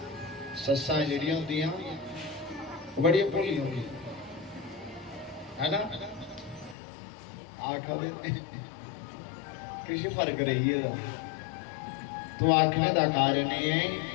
सस्सां जिहड़ियां होंदियां बड़ी भोली होंगी है ना। आखदे किसी फर्क रही है तो आखने का कारण है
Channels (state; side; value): drops out; right; at 6.8 s